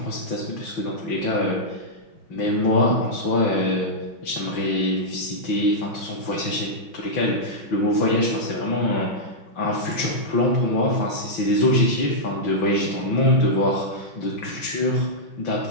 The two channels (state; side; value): late; right; 5.8 ms